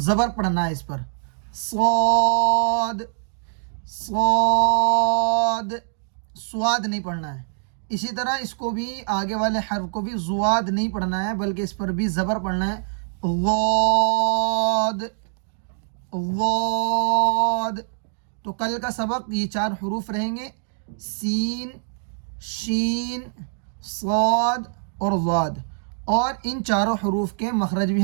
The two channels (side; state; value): left; silent; digital silence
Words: زبر پڑھنا ہے اس پر، صاد، صاد، سواد نہیں پڑھنا ہے۔ اسی طرح اس کو بھی آگے والے حرف کو بھی زواد نہیں پڑھنا ہے بلکہ اس پر بھی زبر پڑھنا ہے، ضاد، ضاد۔ تو کل کا سبق یہ 4 حروف رہیں گے، سین، شین، صاد اور ضاد، اور ان 4 حروف کے مخرج بھی